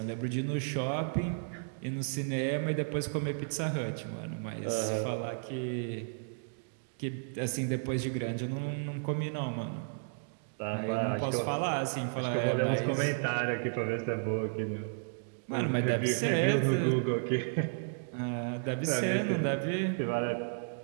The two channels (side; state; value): left; silent; digital silence